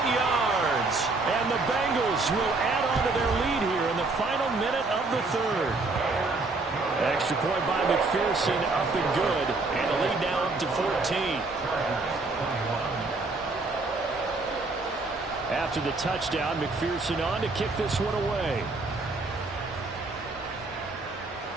yards. And the Bengals will add on to their lead here in the final minute of the third. Extra point by McPherson, up and good. And the lead now up to 14. After the touchdown, McPherson on to kick this one away.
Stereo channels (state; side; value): quieter; left; 3.5 dB